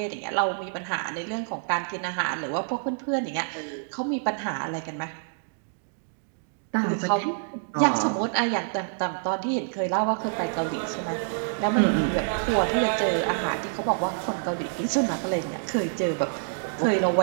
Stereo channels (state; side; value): silent; left; digital silence